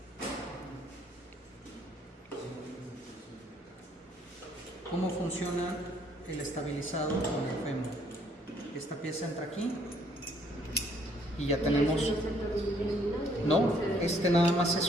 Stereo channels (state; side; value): normal; both; correlation 0.65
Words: ¿cómo funciona el estabilizado con el fémur? Esta pieza entra aquí y ya tenemos... No, este nada más se